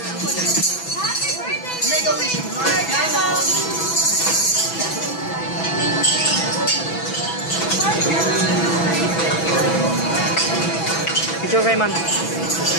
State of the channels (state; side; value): late; right; 6.0 ms